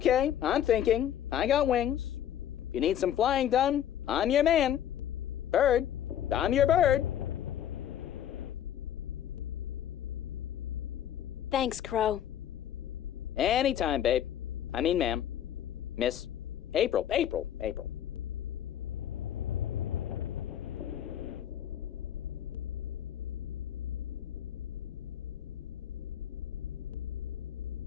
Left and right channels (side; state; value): right; quieter; 10.4 dB